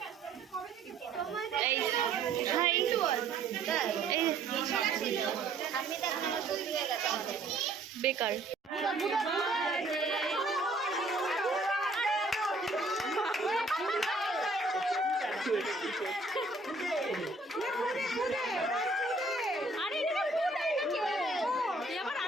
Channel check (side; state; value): left; quieter; 3.2 dB